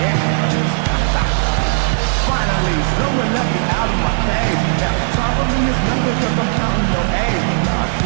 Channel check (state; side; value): silent; left; digital silence